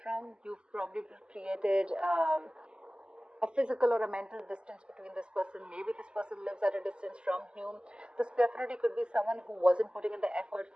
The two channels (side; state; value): left; late; 0.049 ms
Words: from. You've probably created a physical or a mental distance between this person. Maybe this person lives at a distance from you. This definitely could be someone who wasn't putting in the effort